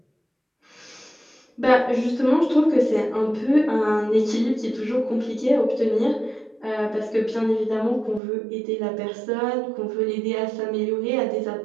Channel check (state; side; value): drops out; left; at 8.2 s